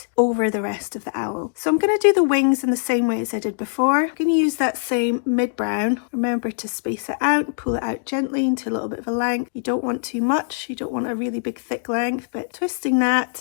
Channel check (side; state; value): right; silent; digital silence